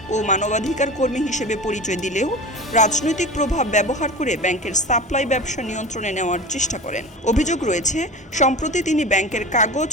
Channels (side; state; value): both; normal; correlation 0.32